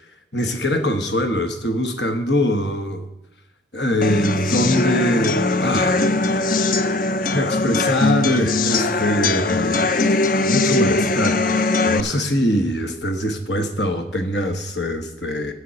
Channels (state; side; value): normal; both; correlation 0.50